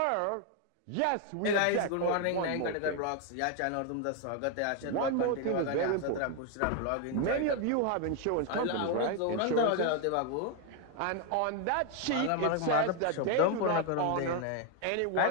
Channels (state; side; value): different; both; correlation 0.01